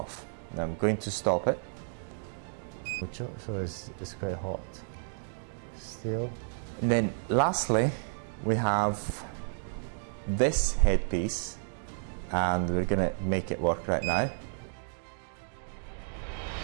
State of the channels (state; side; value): silent; left; digital silence